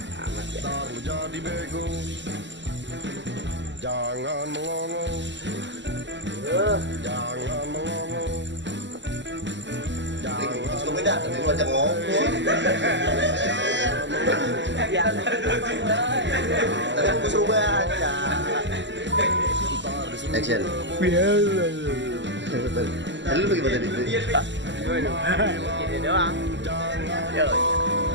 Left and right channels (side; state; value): left; late; 0.53 ms